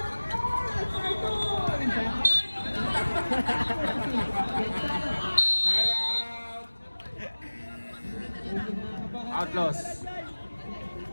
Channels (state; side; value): inverted; both; correlation -1.00